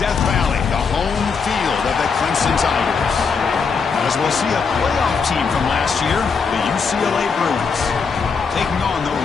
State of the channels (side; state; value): right; quieter; 5.4 dB